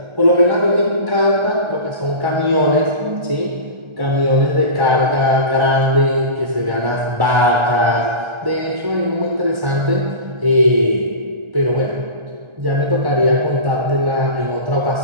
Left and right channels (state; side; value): late; left; 1.3 ms